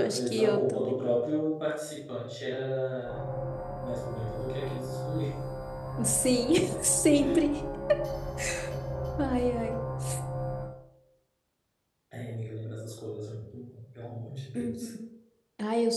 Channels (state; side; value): identical; both; correlation 1.00